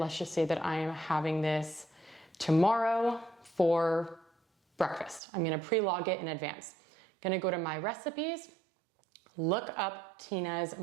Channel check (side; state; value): left; drops out; at 5.2 s